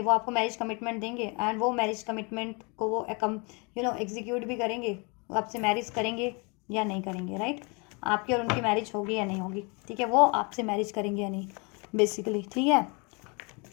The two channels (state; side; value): quieter; right; 31.6 dB